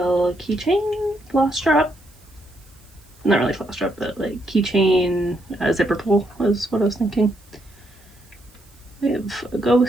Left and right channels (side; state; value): right; noise; hiss, 29 dB below the sound